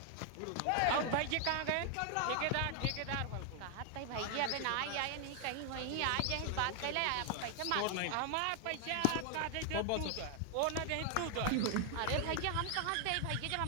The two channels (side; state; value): both; different; correlation 0.00